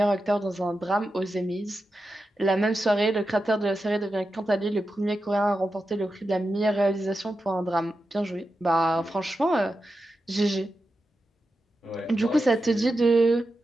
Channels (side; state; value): both; normal; correlation 0.90